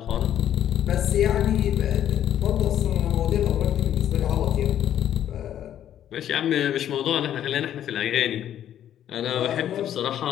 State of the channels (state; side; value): quieter; right; 10.8 dB